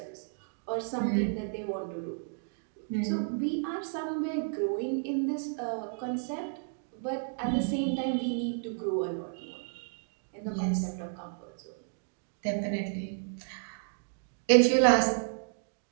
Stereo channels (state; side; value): silent; left; digital silence